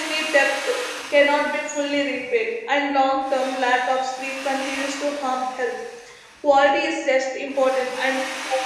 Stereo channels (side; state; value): both; identical; correlation 1.00